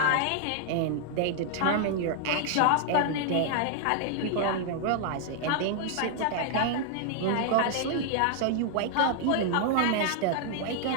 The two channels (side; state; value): both; different; correlation 0.00